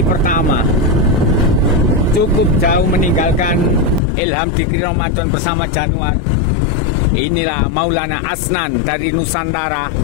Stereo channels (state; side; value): drops out; right; at 4.0 s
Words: pertama. Cukup jauh meninggalkan Ilham Dikri Ramadan bersama Januar. Inilah Maulana Asnan dari Nusantara.